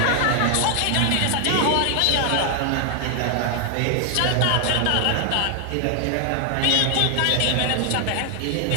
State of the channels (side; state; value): both; different; correlation 0.00